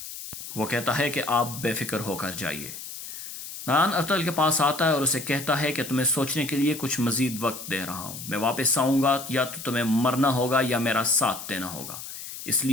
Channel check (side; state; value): left; noise; hiss, 10 dB below the sound